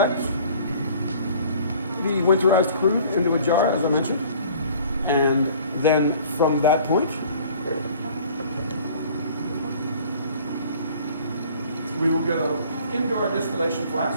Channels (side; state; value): both; inverted; correlation -0.51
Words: the winterized crude into a jar, as I mentioned. And then from that point, we will go into our distillation